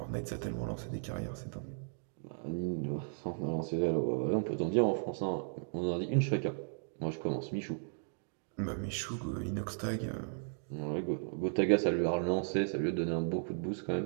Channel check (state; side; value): silent; left; digital silence